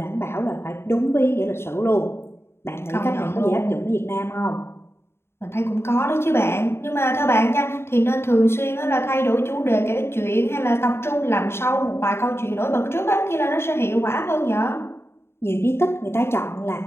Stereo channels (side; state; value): right; late; 0.12 ms